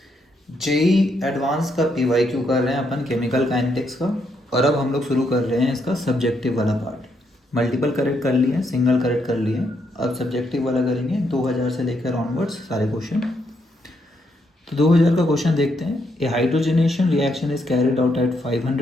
JEE advance का पीवाईक्यू कर रहे हैं अपन केमिकल काइनेटिक्स का। और अब हम लोग शुरू कर रहे हैं इसका सब्जेक्टिव वाला पार्ट। मल्टीपल करेक्ट कर लिए, सिंगल करेक्ट कर लिए, अब सब्जेक्टिव वाला करेंगे 2000 से लेकर ऑनवर्ड्स सारे क्वेश्चन। तो 2000 का क्वेश्चन देखते हैं। A hydrogenation reaction is carried out at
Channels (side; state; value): both; normal; correlation 0.77